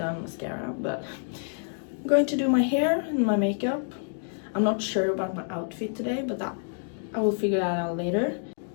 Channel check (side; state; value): right; silent; digital silence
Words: mascara, but I'm going to do my hair and my makeup. I'm not sure about my outfit today, but I will figure that out later.